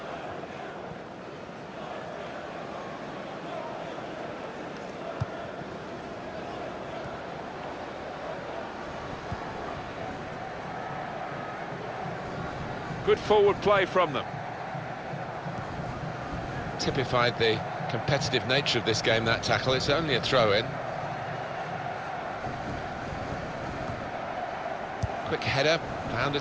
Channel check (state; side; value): identical; both; correlation 1.00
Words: Good forward play from them. Typified the competitive nature of this game, that tackle. It's only a throw-in. Quick header, found a